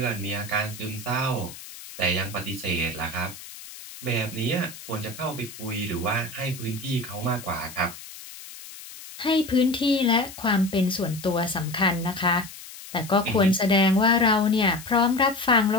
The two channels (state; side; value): noise; left; hiss, 15 dB below the sound